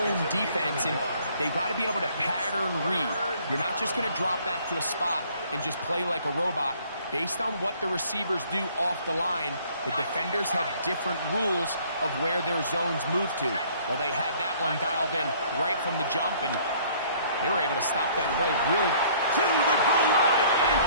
defense, and they've got to be able to pattern read. You're not just going to drop back to a spot and just play like a robot. Based on what the receivers do off the line, the defenders have different rules of where their zones move to. Well, they had that one dialed in right from the jump, and they were able to stop that play really. To the goal line and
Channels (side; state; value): both; inverted; correlation -0.58